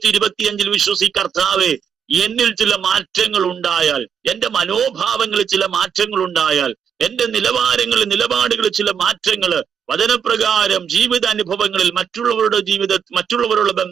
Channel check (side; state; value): left; quieter; 7.6 dB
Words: വിശ്വസി കർത്താവേ, എന്നിൽ ചില മാറ്റങ്ങൾ ഉണ്ടായാൽ, എന്റെ മനോഭാവങ്ങളിൽ ചില മാറ്റങ്ങൾ ഉണ്ടായാൽ, എന്റെ നിലപാടുകളിൽ ചില മാറ്റങ്ങള് വചനപ്രകാരം ജീവിതാനുഭവങ്ങളിൽ മറ്റുള്ളവരുടെ